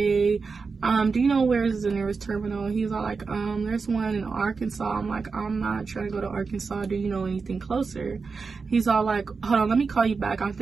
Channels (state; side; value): quieter; left; 4.8 dB